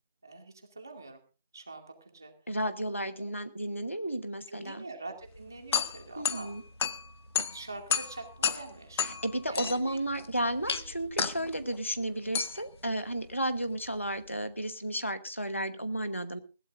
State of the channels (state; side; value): inverted; both; correlation -0.60